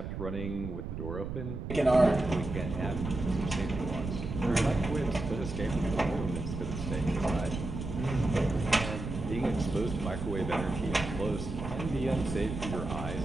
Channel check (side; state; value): right; noise; rumble, 6 dB below the sound